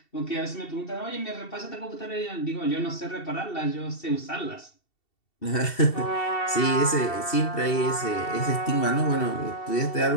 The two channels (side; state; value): right; late; 2.7 ms